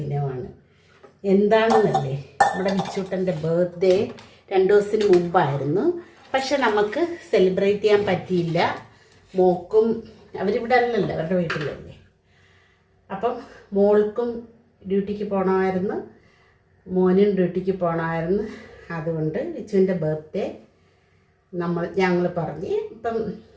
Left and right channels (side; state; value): both; identical; correlation 1.00